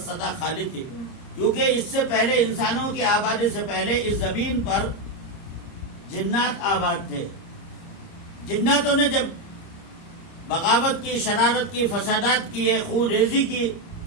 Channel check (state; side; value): late; right; 30 ms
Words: سدا خالی تھی، کیونکہ اس سے پہلے انسانوں کی آبادی سے پہلے اس زمین پر جنات آباد تھے۔ جناتوں نے جب بغاوت کی، شرارت کی، فسادات کیے، خون ریزی کی،